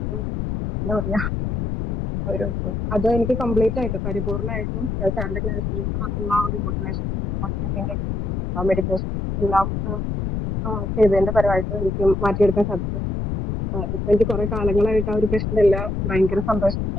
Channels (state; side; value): noise; left; rumble, 2 dB below the sound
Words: എന്താ പറയാ ഒരു അത് എനിക്ക് കംപ്ലീറ്റ് ആയിട്ട് പരിപൂർണമായിട്ടും സാറിന്റെ ക്ലാസ്സിൽ ഉള്ള ആ ഒരു മോട്ടിവേഷൻ മെഡിറ്റേഷൻ എല്ലാം ചെയ്തതിന്റെ പരമായിട്ട് എനിക്ക് മാറ്റിയെടുക്കാൻ സാധിച്ചു. ഇപ്പൊ എനിക്ക് കുറെ കാലങ്ങളായിട്ട് ആ ഒരു പ്രശ്നമില്ല. ഭയങ്കര സന്തോഷം